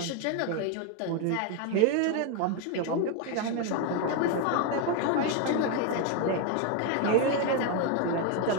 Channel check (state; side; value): different; both; correlation 0.02